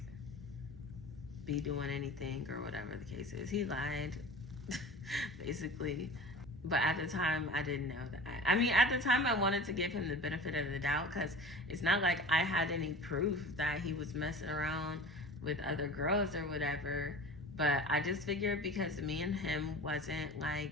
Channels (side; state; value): both; normal; correlation 0.38